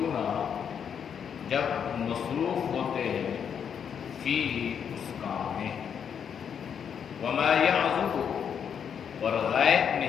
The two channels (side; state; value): right; quieter; 7.7 dB